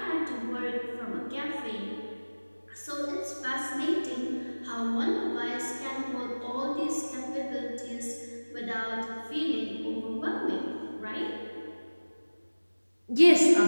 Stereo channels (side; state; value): both; inverted; correlation -1.00